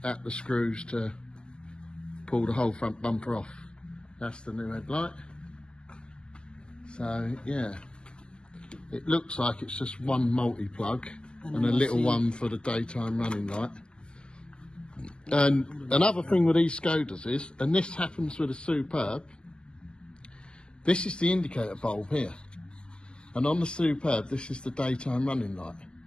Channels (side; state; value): right; late; 0.052 ms